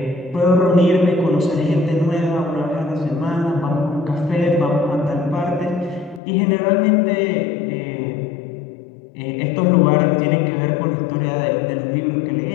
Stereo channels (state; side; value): drops out; right; at 6.2 s